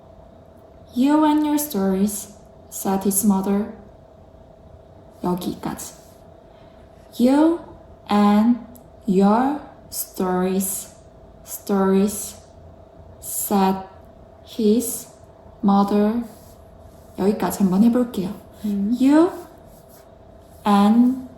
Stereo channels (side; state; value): both; identical; correlation 1.00